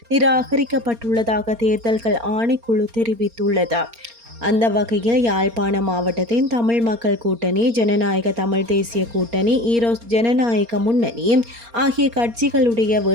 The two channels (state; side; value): late; left; 4.3 ms